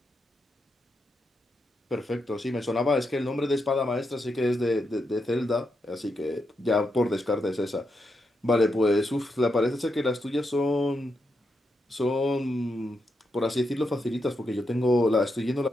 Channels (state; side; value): normal; both; correlation 0.84